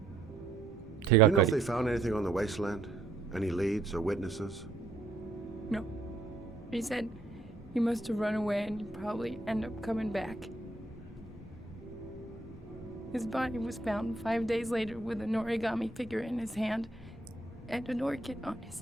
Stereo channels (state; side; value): quieter; left; 3.0 dB